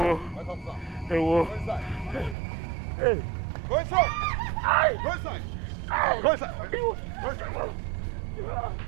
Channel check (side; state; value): left; drops out; at 2.4 s